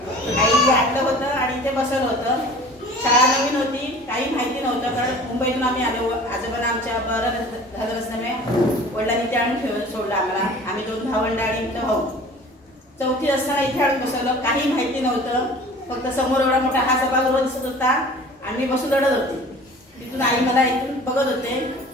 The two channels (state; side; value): normal; both; correlation 0.44